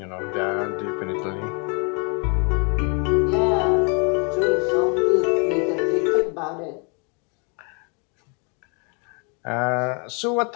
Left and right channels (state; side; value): quieter; right; 35.4 dB